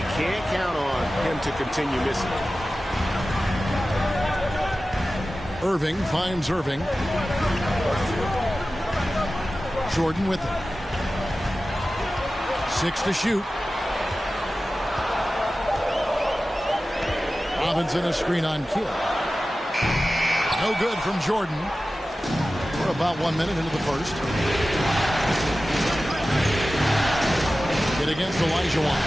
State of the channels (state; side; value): normal; both; correlation 0.95